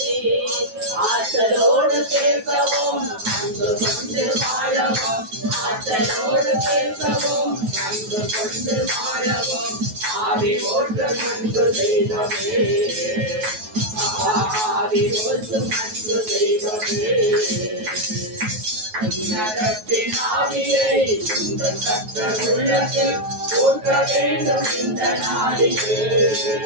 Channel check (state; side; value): late; left; 9.3 ms